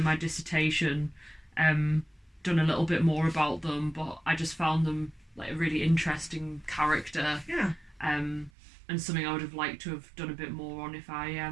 my dissertation done a little bit more about them, but I just found them like a really interesting character. Yeah. And something I would have liked to have done a bit more on if I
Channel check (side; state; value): left; drops out; at 8.5 s